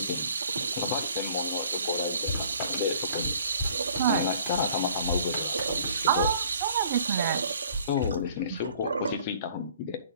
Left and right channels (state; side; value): inverted; both; correlation -0.55